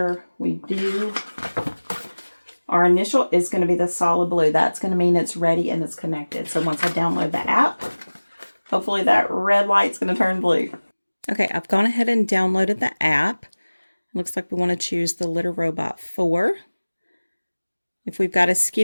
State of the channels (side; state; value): both; inverted; correlation -1.00